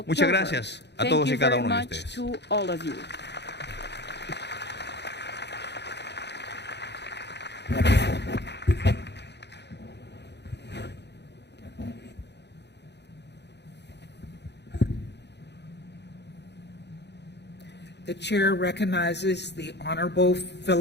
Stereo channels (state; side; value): late; right; 0.50 ms